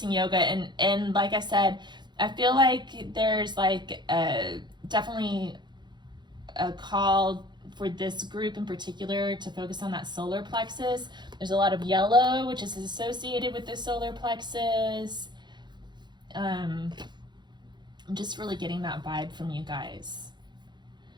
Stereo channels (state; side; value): late; left; 0.21 ms